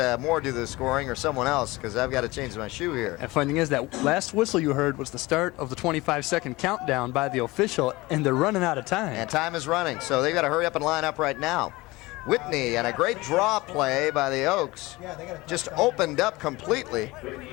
Moore do the scoring or someone else because I've got to change my shoe here. And funny thing is, that last whistle you heard was the start of the 25-second countdown by the official, and they're running out of time. And time is running, so they've got to hurry up and line up right now. Whitney, and a great draw play by the Oaks, just opened up completely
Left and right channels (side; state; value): right; quieter; 21.2 dB